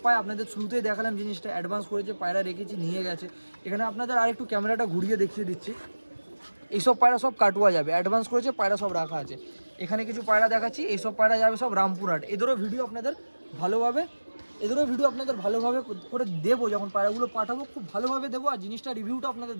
পায়, আপনাদের শুরুতেই দেখালাম জিনিসটা, অ্যাডভান্স করেছে, পায়রা রেখেছি, নিয়ে গেছে। এখানে আপনাদের আরেকটু ক্যামেরাটা ঘুরিয়ে দেখিয়ে দিচ্ছি, এইসব পায়রা সব কাটুয়া যাবে, অ্যাডভান্স করেছে, পায়রা সব রাখা আছে। এখানে কিছু পায়রা দেখাচ্ছি, এইসব পায়রা যাবে সব রামপুরহাট। এদেরও ভিডিও আপনাদের ভালোভাবে করে দেবো, যখন পায়রাগুলো পাঠাবো খুব ভালোভাবে দেবো, আর জিনিসটা রিভিউটা আপনাদের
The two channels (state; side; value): inverted; both; correlation -1.00